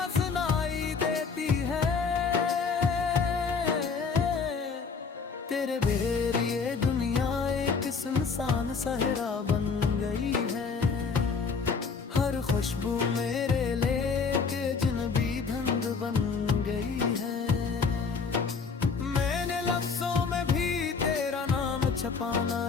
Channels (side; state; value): right; quieter; 5.2 dB